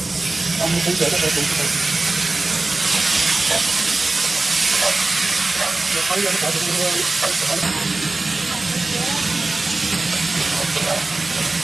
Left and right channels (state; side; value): quieter; left; 3.2 dB